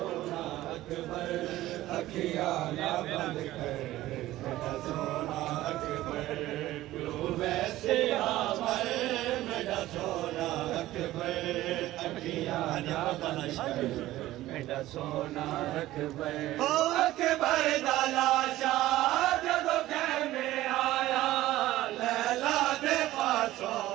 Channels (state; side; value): quieter; left; 15.7 dB